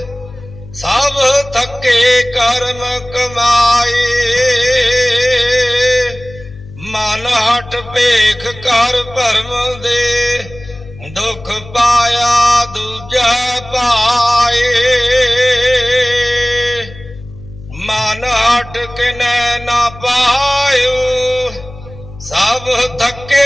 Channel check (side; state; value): left; noise; hum, 17 dB below the sound